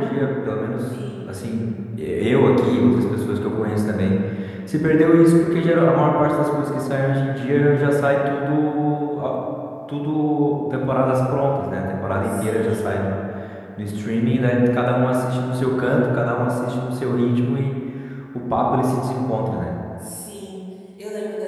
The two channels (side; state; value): both; identical; correlation 1.00